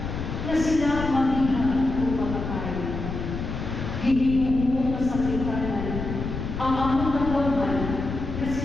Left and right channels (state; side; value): noise; left; rumble, 5 dB below the sound